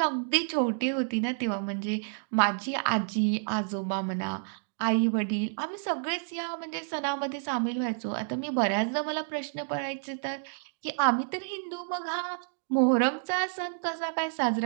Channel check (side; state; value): left; silent; digital silence